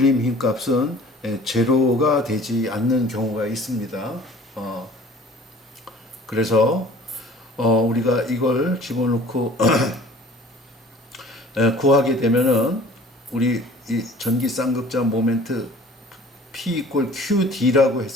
힘 값은 제로가 되지 않는 경우가 있습니다. 그래서 우리가 이걸 집어넣고 구하게 되면은 우리 이 전기 쌍극자 모멘트 P 이퀄 QD라고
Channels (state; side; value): normal; both; correlation 0.48